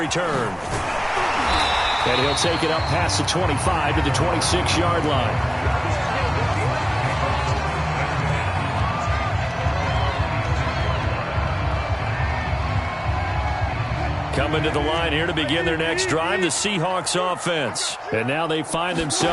And he'll take it up past the 25 to the 26-yard line. Coming to the line here to begin their next drive, the Seahawks offense. And now they find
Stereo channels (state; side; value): identical; both; correlation 1.00